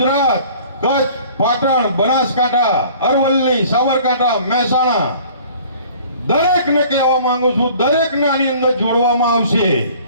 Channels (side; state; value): both; inverted; correlation -0.50